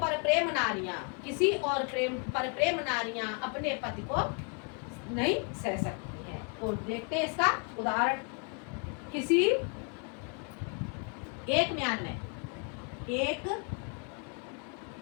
प्रेम नारियां, किसी और पर प्रेम नारियां अपने पति को नहीं सह सकती हैं। तो देखते हैं इसका उदाहरण। किसी एक म्यान में, एक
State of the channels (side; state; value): right; quieter; 37.9 dB